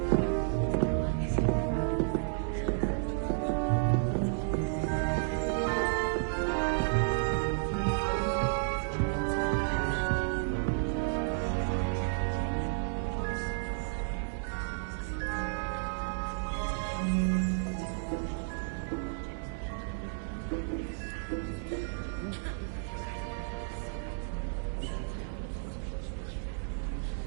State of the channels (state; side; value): silent; left; digital silence